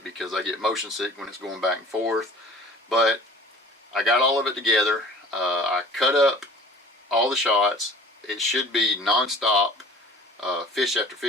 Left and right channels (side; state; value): both; normal; correlation 0.45